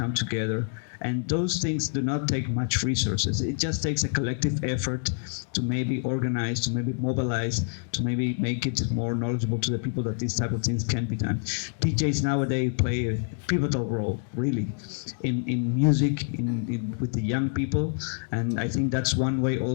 together, and those things do not take much resources. It just takes a collective effort to maybe organize, to maybe mobilize, to maybe make it more knowledgeable to the people that these type of things can be done. DJs nowadays play a pivotal role, really, in music, with the young people, and I think that's one way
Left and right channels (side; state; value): right; silent; digital silence